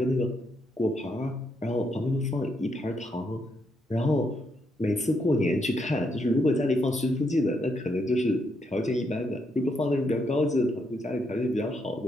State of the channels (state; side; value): normal; both; correlation 0.77